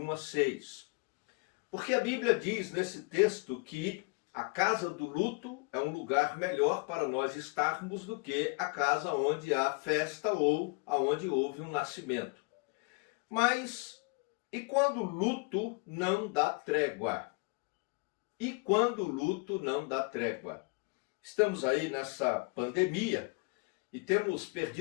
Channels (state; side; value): quieter; right; 30.4 dB